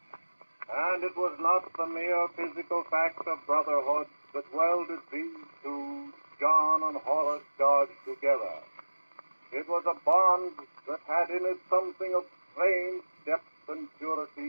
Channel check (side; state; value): both; inverted; correlation -1.00